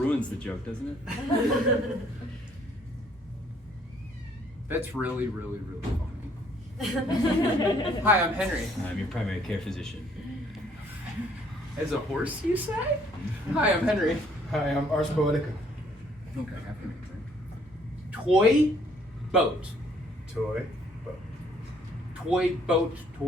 the joke, doesn't it? That's really, really, really funny. Hi, I'm Henry. I'm your primary care physician. As a horse, you say? Hi, I'm Henry. Hi, I'm Ars Poetica. Okay, toy boat. Toy, boat. Toy boat,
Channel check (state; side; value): normal; both; correlation 0.63